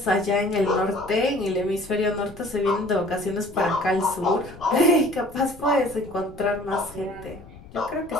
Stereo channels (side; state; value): left; noise; rumble, 19 dB below the sound